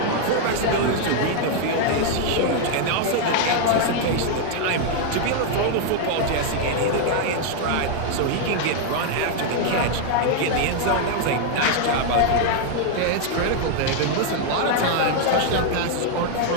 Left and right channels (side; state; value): both; different; correlation 0.00